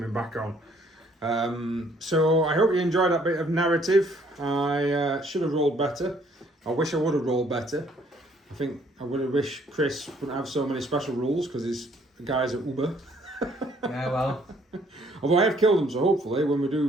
back on. So I hope you enjoyed that bit of narrative. I should have rolled better. I wish I would have rolled better. I think I would have wished Chris wouldn't have so many special rules because his guys are Uber. Yeah, well. Although I have killed him, so hopefully when we do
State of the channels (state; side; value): normal; both; correlation 0.63